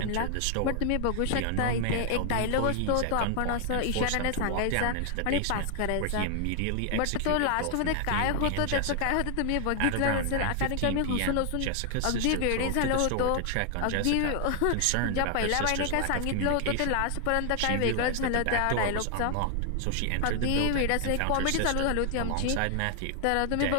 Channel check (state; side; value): different; both; correlation 0.00